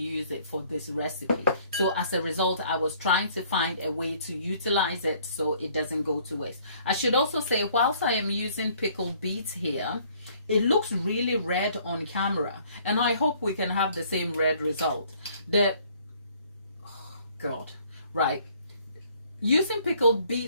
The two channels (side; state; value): both; inverted; correlation -0.60